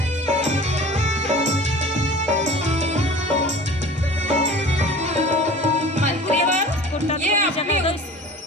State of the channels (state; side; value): normal; both; correlation 0.41